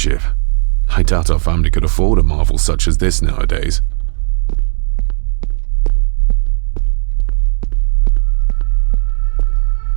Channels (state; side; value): silent; left; 62 dB below the other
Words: I doubt our family could afford a marvel such as this nowadays.